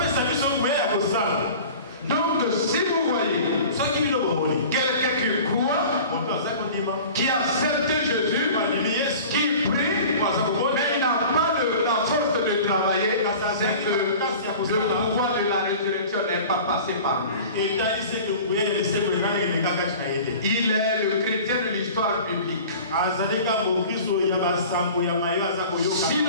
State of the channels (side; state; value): both; inverted; correlation -0.41